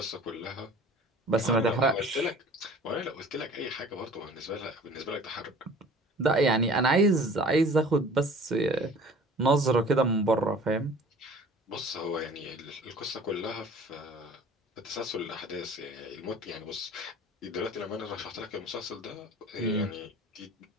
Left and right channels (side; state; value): both; normal; correlation 0.46